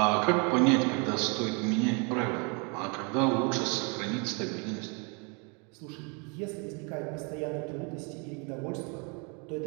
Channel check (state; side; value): quieter; left; 34.1 dB